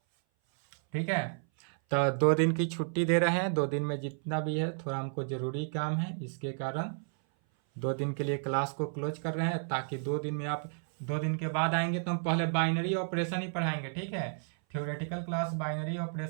ठीक है। तो 2 दिन की छुट्टी दे रहे हैं, 2 दिन में जितना भी है थोड़ा हमको ज़रूरी काम है, इसके कारण 2 दिन के लिए क्लास को क्लोज कर रहे हैं, ताकि 2 दिन में आप 2 दिन के बाद आएंगे तो हम पहले बाइनरी ऑपरेशन ही पढ़ाएंगे, ठीक है। थ्योरेटिकल क्लास बाइनरी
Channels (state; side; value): silent; left; 57 dB below the other